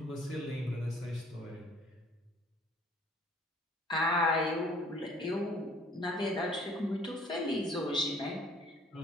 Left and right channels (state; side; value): normal; both; correlation 0.56